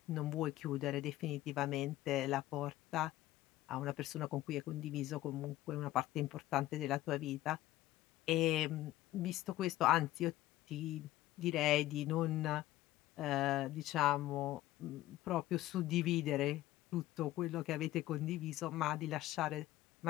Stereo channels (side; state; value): right; quieter; 15.3 dB